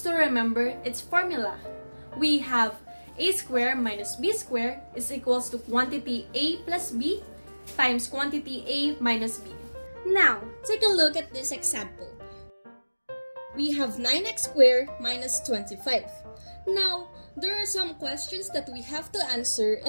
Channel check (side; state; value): both; inverted; correlation -1.00